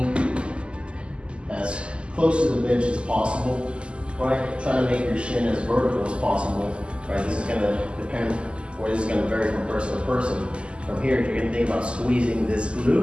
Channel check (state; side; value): late; left; 0.052 ms